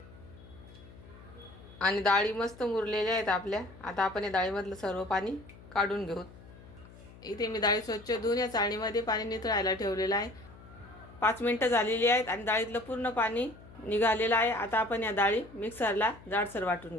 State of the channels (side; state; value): left; noise; hum, 20 dB below the sound